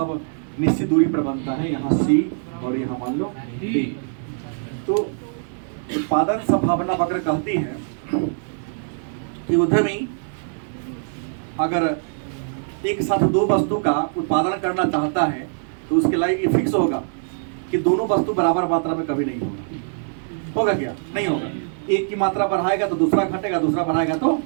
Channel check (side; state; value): left; silent; digital silence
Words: निश्चित दूरी पर बनता है, यहाँ सी और यहाँ मान लो डी। तो उत्पादन संभावना वक्र कहती है कि उद्यमी अगर एक साथ 2 वस्तु का उत्पादन करना चाहता है तो उसके लिए ये फिक्स होगा कि दोनों वस्तु बराबर मात्रा में कभी नहीं होगा। होगा क्या? नहीं होगा। एक की मात्रा बढ़ाएगा तो दूसरा घटेगा, दूसरा बढ़ाएगा तो